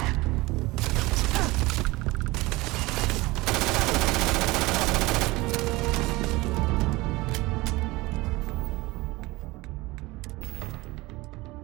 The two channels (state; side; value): quieter; left; 21.3 dB